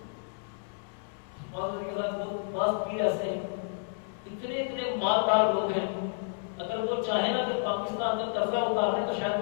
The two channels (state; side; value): silent; right; 57 dB below the other